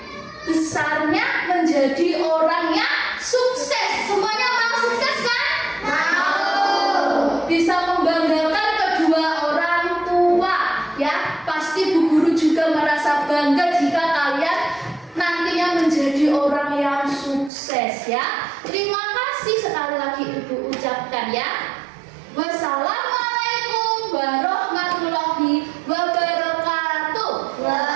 besarnya menjadi orang yang sukses. Semuanya mau sukses kan? Mau. Bisa membanggakan kedua orang tua, ya. Pasti Bu Guru juga merasa bangga jika kalian nantinya menjadi orang yang sukses, ya. Terima kasih sekali lagi Ibu ucapkan, ya. Wassalam.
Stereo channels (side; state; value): left; drops out; at 17.5 s